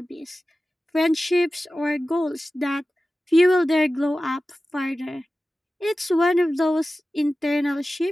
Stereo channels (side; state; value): both; normal; correlation 0.95